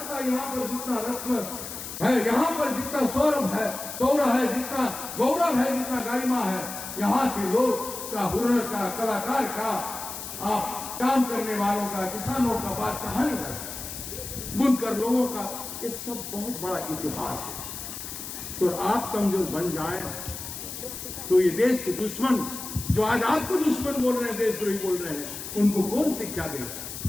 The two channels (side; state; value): left; noise; hiss, 9 dB below the sound